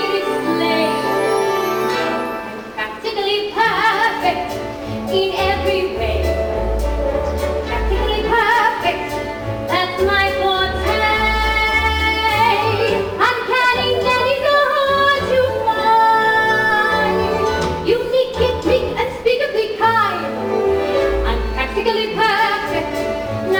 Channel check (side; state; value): both; identical; correlation 1.00